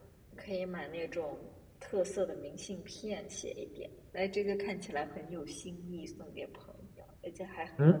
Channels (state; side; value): identical; both; correlation 1.00